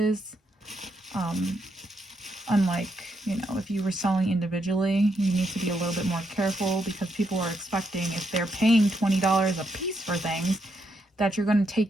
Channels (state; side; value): normal; both; correlation 0.79